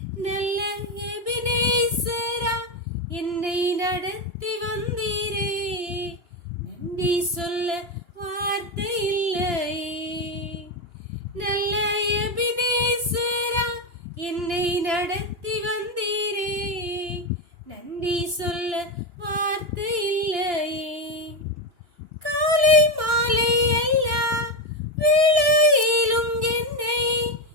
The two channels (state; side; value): late; left; 2.9 ms